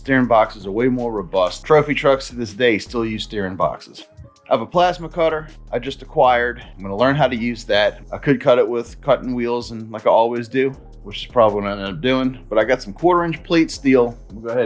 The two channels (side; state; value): both; identical; correlation 1.00